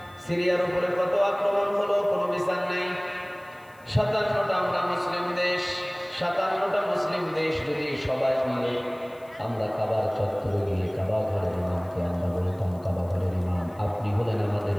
সিরিয়ার উপরে কত আক্রমণ হলো, কোনো বিচার নাই। 57টা আমরা মুসলিম দেশ, 57টা মুসলিম দেশ যদি সবাই মিলে আমরা কাবার চত্বরে গিয়ে কাবা ঘরের ইমামকে আমরা বলতাম, কাবা ঘরের ইমাম আপনি হলেন আমাদের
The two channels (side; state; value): left; noise; hiss, 29 dB below the sound